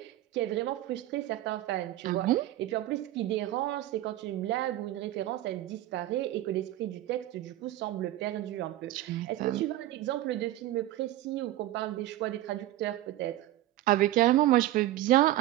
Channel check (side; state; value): left; quieter; 15.0 dB